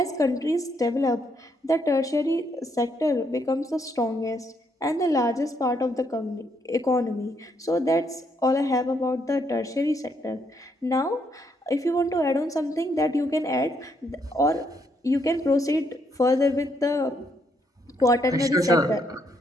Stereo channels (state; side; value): normal; both; correlation 0.74